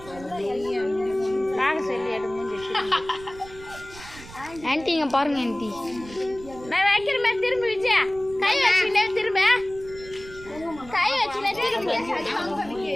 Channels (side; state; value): right; noise; rumble, 18 dB below the sound